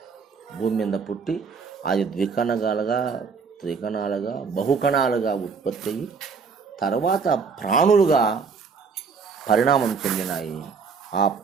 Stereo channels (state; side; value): quieter; left; 5.4 dB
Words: భూమి మీద పుట్టి అది ద్వికణాలుగా, త్రికణాలుగా, బహుకణాలుగా ఉత్పత్తి అయ్యి తర్వాత ప్రాణులుగా పరిణామం చెందినాయి. ఆ